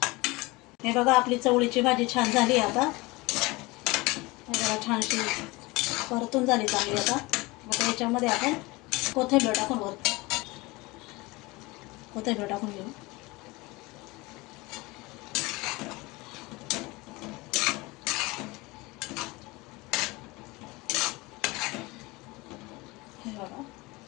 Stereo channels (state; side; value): quieter; right; 23.0 dB